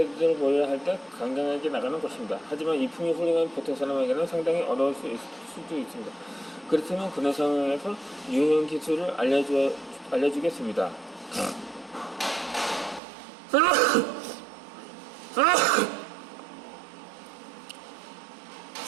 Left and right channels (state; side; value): drops out; left; at 13.0 s